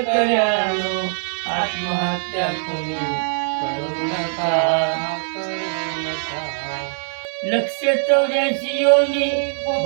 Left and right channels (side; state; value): left; silent; 62 dB below the other